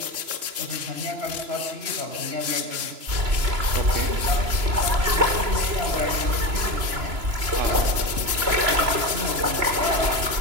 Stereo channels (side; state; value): left; late; 2.9 ms